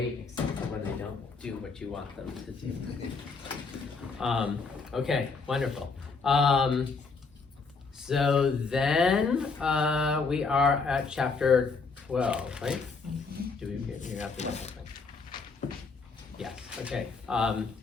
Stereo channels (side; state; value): right; quieter; 4.6 dB